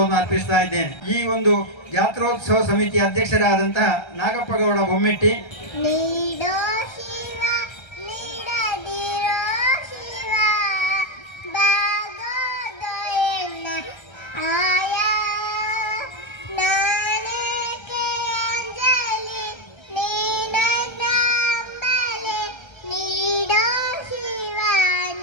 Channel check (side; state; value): right; late; 1.3 ms